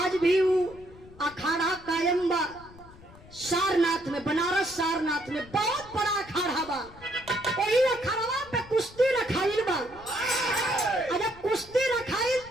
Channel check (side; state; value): left; noise; rumble, 21 dB below the sound